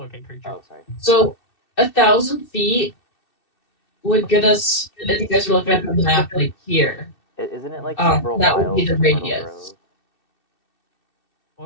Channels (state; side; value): late; right; 2.6 ms